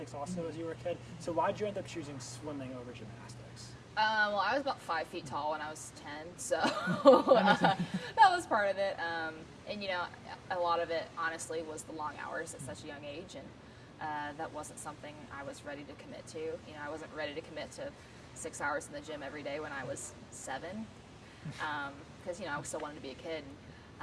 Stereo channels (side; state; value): both; identical; correlation 1.00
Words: also as you were a kid. So why did you end up choosing swimming over gymnastics? Well, I was about 5 feet tall when I was 10, so that was part of it. And a lot of it, honestly, was the long hours at such a young age, and that wasn't something I was ready to commit to. I wasn't ready to commit to 6 hours in the gym every day when I was 7, because I still wanted to be a kid.